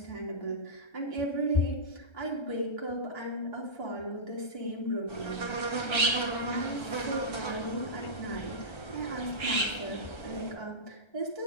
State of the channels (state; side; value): late; right; 1.3 ms